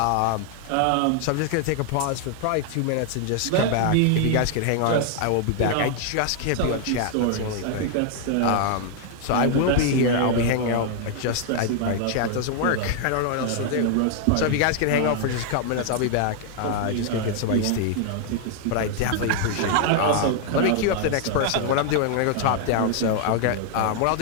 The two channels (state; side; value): different; both; correlation 0.00